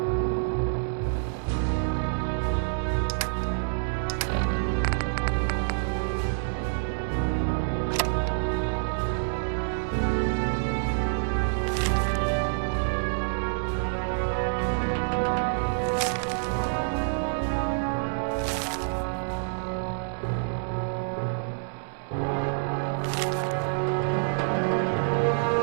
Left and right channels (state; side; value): silent; left; digital silence